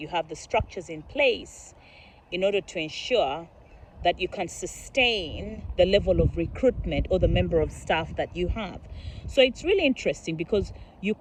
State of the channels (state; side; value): identical; both; correlation 1.00